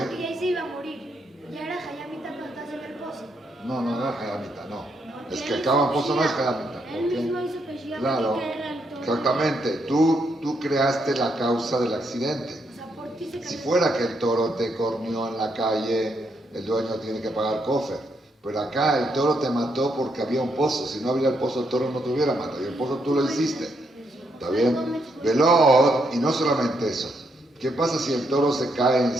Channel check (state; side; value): normal; both; correlation 0.77